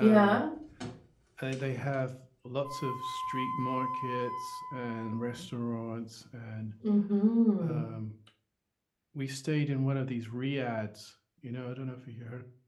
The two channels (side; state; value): both; identical; correlation 1.00